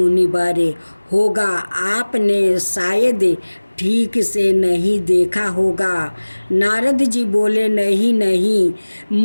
होगा आपने शायद ठीक से नहीं देखा होगा। नारद जी बोले, नहीं नहीं,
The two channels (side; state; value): both; inverted; correlation -1.00